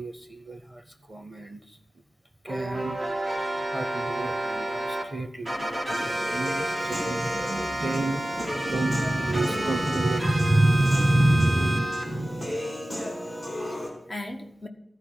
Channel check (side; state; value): both; normal; correlation 0.96